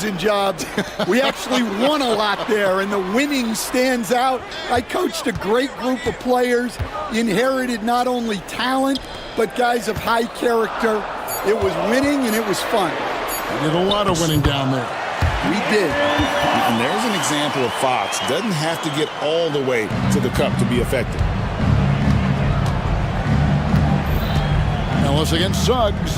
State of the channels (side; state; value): both; identical; correlation 1.00